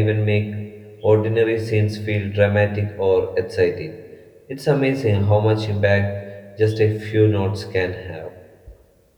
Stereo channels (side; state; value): both; identical; correlation 1.00